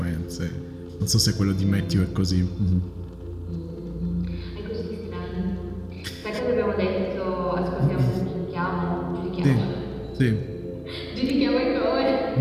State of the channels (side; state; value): both; identical; correlation 1.00